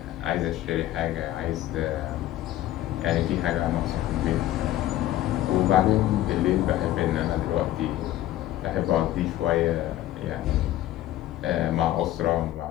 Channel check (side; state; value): right; quieter; 14.2 dB